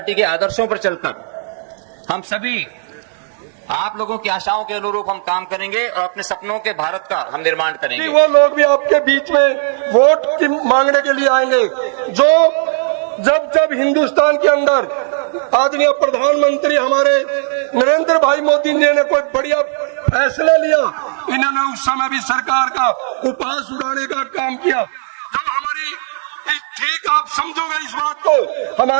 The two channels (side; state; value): left; silent; 62 dB below the other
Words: के आदर्शों पर चलकर हम सभी आप लोगों की आशाओं के अनुरूप हम काम करेंगे और अपने सपनों के भारत का हम निर्माण करेंगे। वो लोग भी आपके बीच में वोट की मांगने के लिए आएंगे जो जब हिंदुस्तान के अंदर आदरणीय प्रधानमंत्री हमारे नरेंद्र भाई मोदी जी ने कोई बढ़िया फैसला लिया, इन्होंने उस समय भी सरकार का उपहास उड़ाने का काम किया। जब हमारी ठीक आप समझोगे इस बात को,